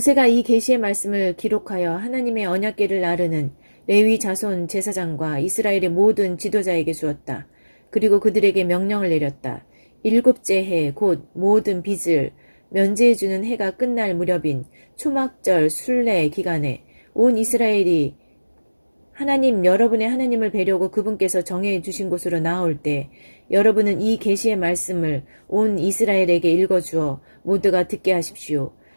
이 계시의 말씀을 기록하여 하나님의 언약궤를 나르는 레위 자손 제사장과 이스라엘의 모든 지도자에게 주었다. 그리고 그들에게 명령을 내렸다. 7째 해 곧 모든 빚을 면제해주는 해가 끝날 무렵인 초막절 순례 기간에 온 이스라엘이 하나님 여러분의 하나님을 뵈려고 그분께서 정해 주신 곳으로 나올 때 여러분은 이 계시의 말씀을 온 이스라엘에게 읽어주어 모두가 듣게 하십시오.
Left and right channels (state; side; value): inverted; both; correlation -1.00